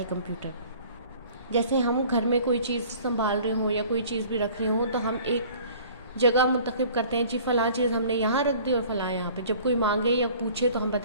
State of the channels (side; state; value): both; inverted; correlation -0.49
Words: कंप्यूटर। जैसे हम घर में कोई चीज़ संभाल रहे हों या कोई चीज़ भी रख रहे हों तो हम एक जगह मुंतखब करते हैं, जी फ़लाँ चीज़ हमने यहाँ रख दी और फ़लाँ यहाँ पे। जब कोई मांगे या पूछे तो हम